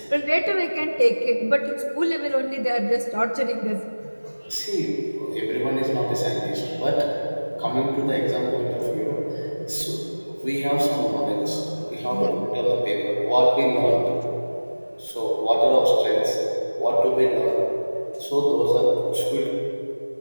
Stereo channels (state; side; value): inverted; both; correlation -1.00